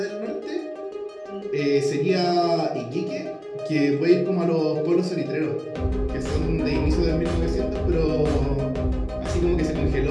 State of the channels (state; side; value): identical; both; correlation 1.00